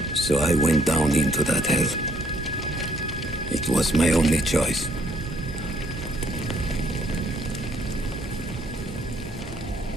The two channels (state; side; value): normal; both; correlation 0.66